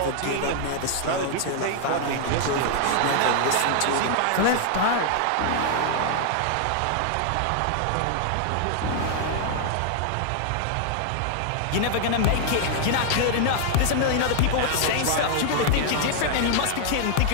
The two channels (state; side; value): different; both; correlation 0.00